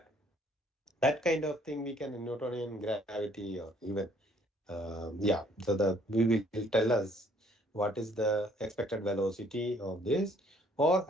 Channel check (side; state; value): both; normal; correlation 0.62